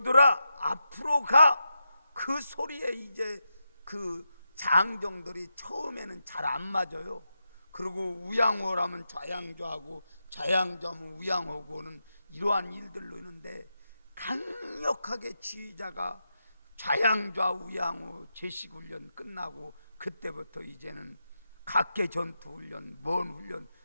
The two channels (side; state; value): both; inverted; correlation -0.87